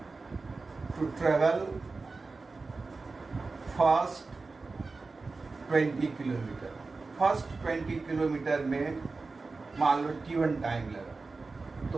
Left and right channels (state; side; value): quieter; left; 3.9 dB